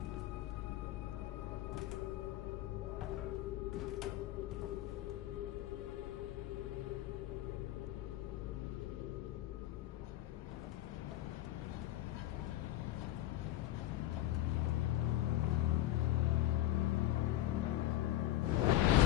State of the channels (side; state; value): right; quieter; 14.6 dB